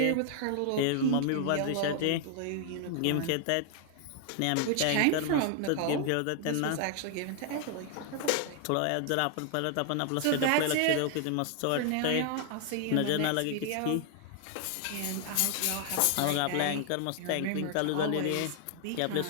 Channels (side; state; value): both; different; correlation 0.00